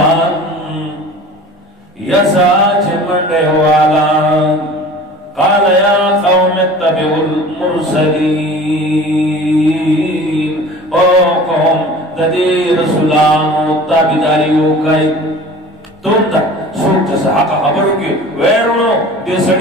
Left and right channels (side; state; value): both; normal; correlation 0.42